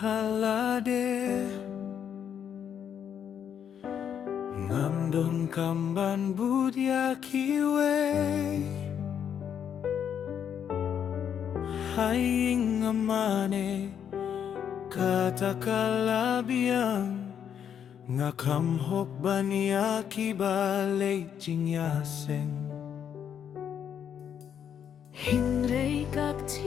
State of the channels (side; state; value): right; quieter; 8.5 dB